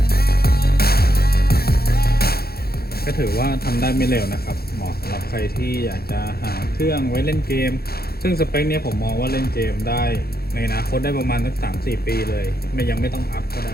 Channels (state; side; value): late; right; 0.45 ms